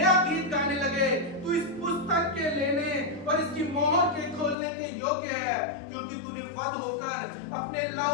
गीत गाने लगे, तू इस पुस्तक के लेने और इसकी मोहर के खोलने के योग्य है, क्योंकि तूने वध होकर अपने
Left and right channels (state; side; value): drops out; right; at 4.5 s